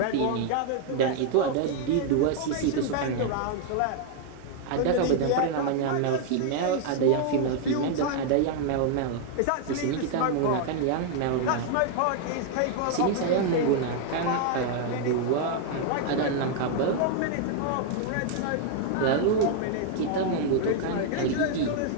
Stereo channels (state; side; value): different; both; correlation 0.00